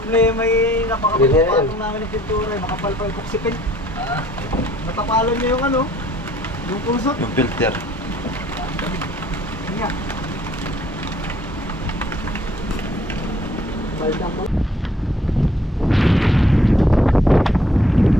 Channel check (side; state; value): both; normal; correlation 0.60